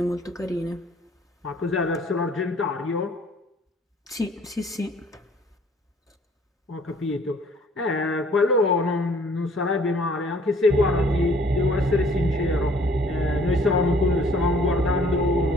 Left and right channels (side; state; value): both; normal; correlation 0.57